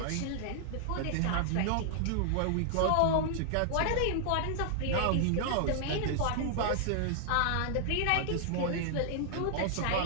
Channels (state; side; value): different; both; correlation -0.01